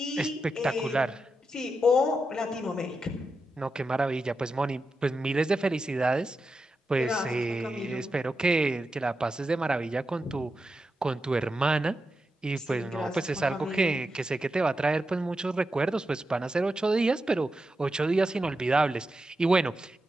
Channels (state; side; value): normal; both; correlation 0.88